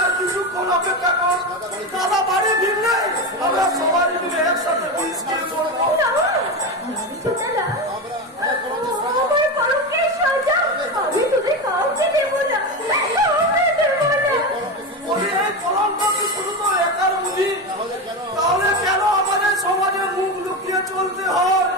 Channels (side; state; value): both; normal; correlation 0.18